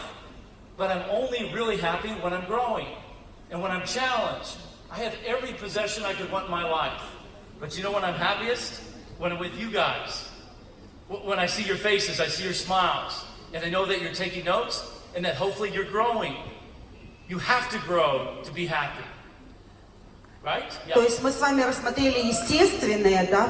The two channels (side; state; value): both; identical; correlation 1.00